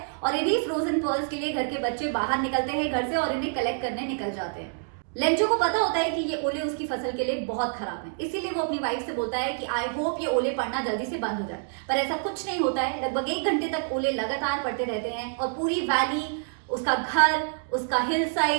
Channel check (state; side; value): silent; left; digital silence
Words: और इन्हीं फ्रोजन पर्ल्स के लिए घर के बच्चे बाहर निकलते हैं घर से और इन्हें कलेक्ट करने निकल जाते हैं। लेंचो को पता होता है कि ये ओले उसकी फसल के लिए बहुत खराब हैं, इसीलिए वो अपनी वाइफ से बोलता है कि आई होप ये ओले पड़ना जल्दी से बंद हो जाए, पर ऐसा कुछ नहीं होता है। लगभग 1 घंटे तक ओले लगातार पड़ते रहते हैं और पूरी वैली, उसका घर, उसका हिल